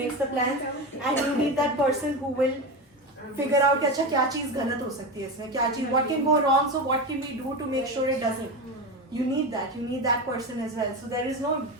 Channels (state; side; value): normal; both; correlation 0.20